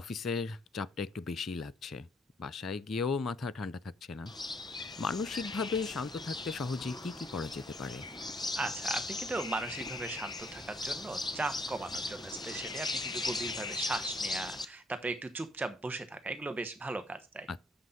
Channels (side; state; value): both; normal; correlation 0.66